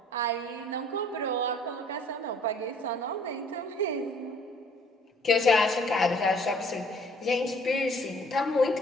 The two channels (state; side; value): normal; both; correlation 0.57